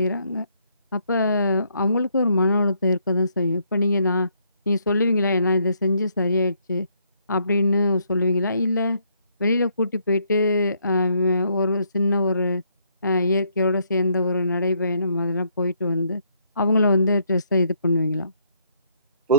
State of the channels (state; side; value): inverted; both; correlation -0.72